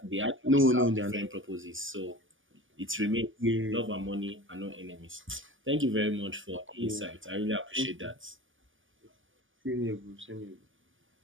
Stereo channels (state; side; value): late; left; 0.57 ms